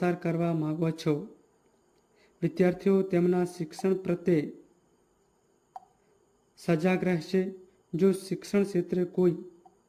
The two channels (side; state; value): both; identical; correlation 1.00